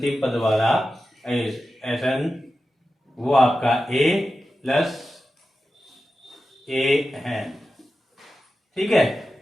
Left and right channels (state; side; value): normal; both; correlation 0.92